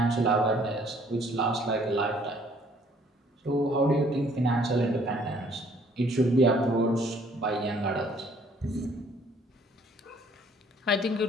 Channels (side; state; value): both; normal; correlation 0.60